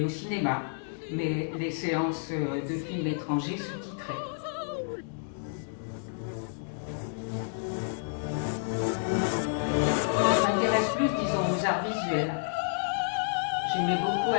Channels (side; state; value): right; silent; digital silence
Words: au cinéma, mais les séances de films étrangers sous-titrés. Je m'intéresse plus, disons, aux arts visuels. J'aimais beaucoup